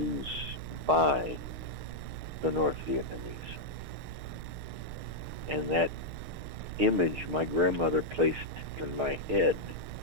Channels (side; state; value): left; late; 6.5 ms